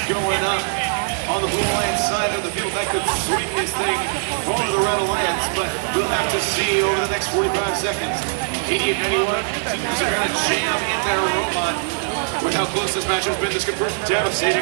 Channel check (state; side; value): silent; left; 65 dB below the other